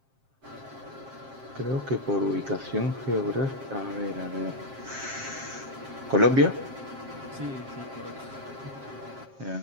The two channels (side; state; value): left; late; 7.5 ms